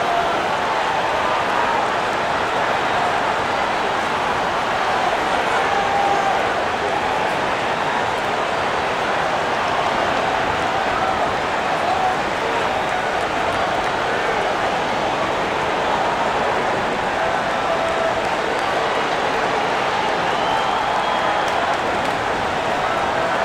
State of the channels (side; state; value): both; identical; correlation 1.00